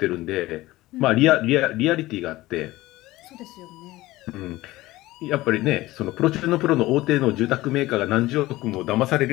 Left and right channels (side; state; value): right; quieter; 18.0 dB